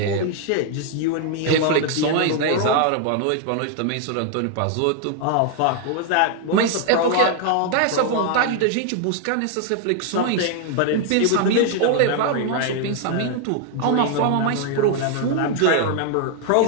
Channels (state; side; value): different; both; correlation 0.00